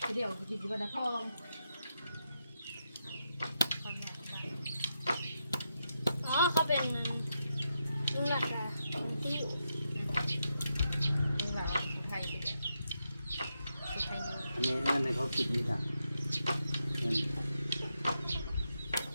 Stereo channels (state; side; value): inverted; both; correlation -0.84